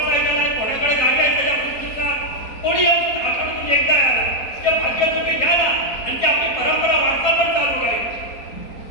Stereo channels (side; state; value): right; late; 4.2 ms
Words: आहे, कोणाकडे गाडी आहे, त्याच्या पृथ्वीचा कोणी येऊन आठवड्यातून एकदा आला ते भाग्य तुम्ही घ्या ना, आणि ती आपली परंपरा वाढता पण चालू आहे.